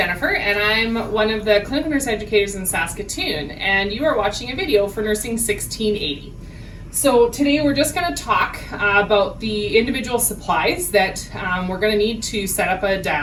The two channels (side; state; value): both; identical; correlation 1.00